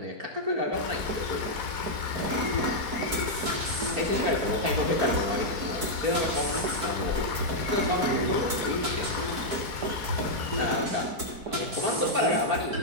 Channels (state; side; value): late; left; 4.6 ms